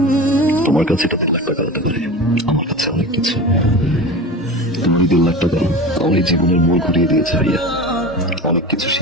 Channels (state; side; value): normal; both; correlation 0.31